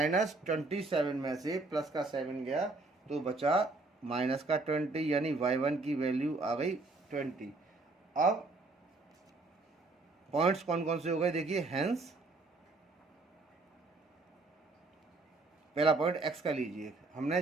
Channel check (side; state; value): left; quieter; 3.4 dB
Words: में से प्लस का 7 गया तो बचा माइनस का 20, यानी y1 की वैल्यू आ गई 20। अब पॉइंट्स कौन कौन से हो गए देखिए, हेंस पहला पॉइंट x का लीजिए। हमने